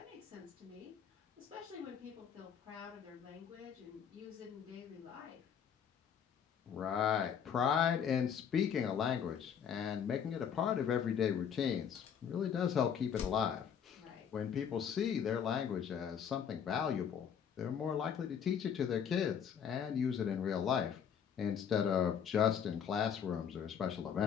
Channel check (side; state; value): right; quieter; 7.9 dB